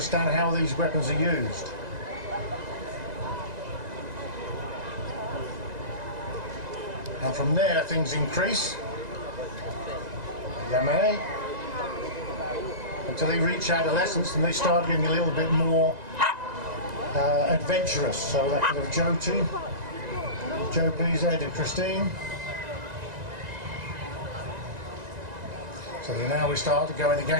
how these weapons are used. And from there things increase, yame, until they reach adolescence and they start getting a little bit more adventurous. So that could have Jo too. Jo, please, Ed and Christine. So now we start going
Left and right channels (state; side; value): late; left; 1.9 ms